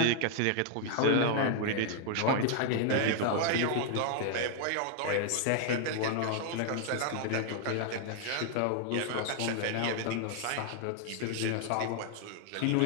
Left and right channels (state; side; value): different; both; correlation 0.00